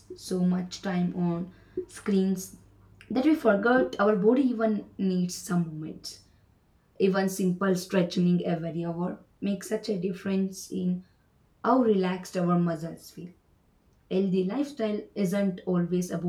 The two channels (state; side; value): identical; both; correlation 1.00